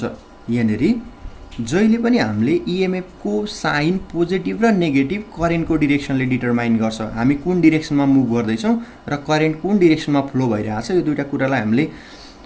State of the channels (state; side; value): identical; both; correlation 1.00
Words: यहाँनिर जहिले पनि हामीले इएमएफको साइन पोजिटिभ र नेगेटिभ करेन्टको डिरेक्सनले डिटरमाइन गर्छ। हामी कुन डिरेक्सनमा मुभ गर्दैछौँ र करेन्ट कुन डिरेक्सनमा फ्लो भइरहेको छ, यो दुईवटा कुरालाई हामीले